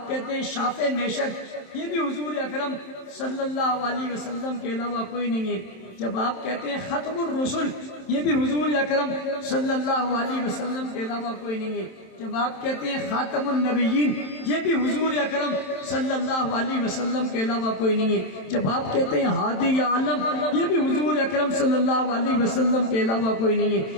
کہتے ہیں شافع معشر، یہ بھی حضور اکرم صلی اللہ علیہ وسلم کے علاوہ کوئی نہیں ہے۔ جب آپ کہتے ہیں ختم الرسل، یہ بھی حضور اکرم صلی اللہ علیہ وسلم کے علاوہ کوئی نہیں ہے۔ جب آپ کہتے ہیں خاتم النبیین، یہ بھی حضور اکرم صلی اللہ علیہ وسلم کے علاوہ کوئی نہیں ہے۔ جب آپ کہتے ہیں ہادی عالم، یہ بھی حضور اکرم صلی اللہ علیہ وسلم کے علاوہ کوئی نہیں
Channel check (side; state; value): right; late; 27 ms